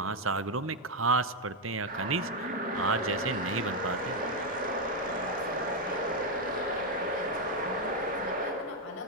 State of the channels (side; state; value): both; normal; correlation 0.03